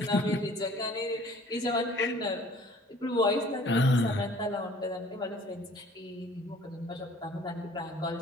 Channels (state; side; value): normal; both; correlation 0.52